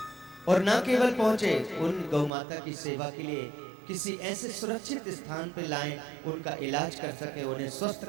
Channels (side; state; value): left; drops out; at 2.3 s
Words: और न केवल पहुंचे, उन गौ माता की सेवा के लिए किसी ऐसे सुरक्षित स्थान पर लाएं, उनका इलाज कर सके, उन्हें स्वस्थ